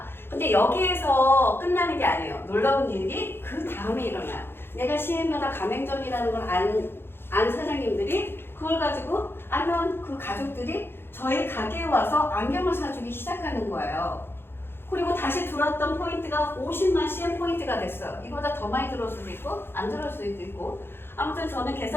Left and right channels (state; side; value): late; right; 0.11 ms